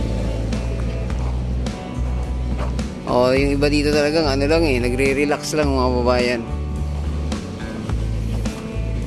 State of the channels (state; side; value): identical; both; correlation 1.00